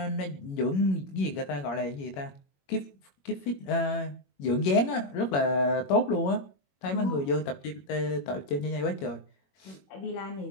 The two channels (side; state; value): right; late; 21 ms